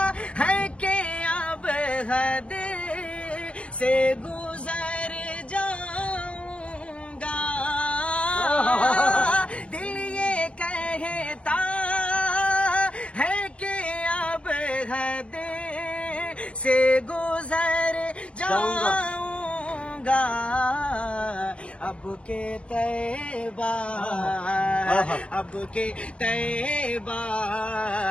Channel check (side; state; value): right; late; 0.060 ms